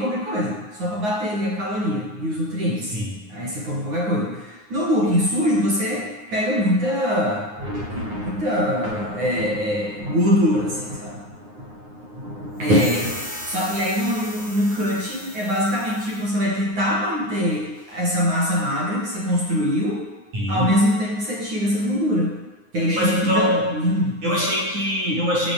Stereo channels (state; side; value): late; left; 9.6 ms